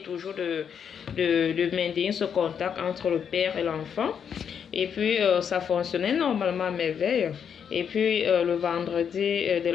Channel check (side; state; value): right; quieter; 7.6 dB